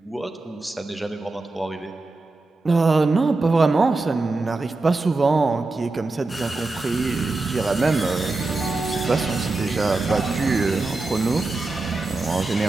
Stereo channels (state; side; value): quieter; left; 3.4 dB